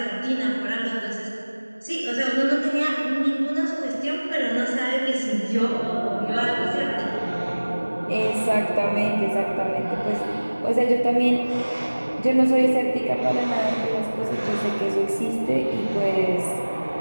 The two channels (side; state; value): both; inverted; correlation -1.00